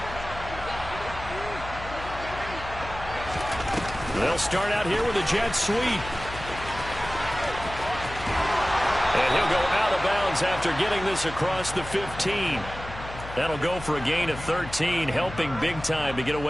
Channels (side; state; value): left; noise; hum, 12 dB below the sound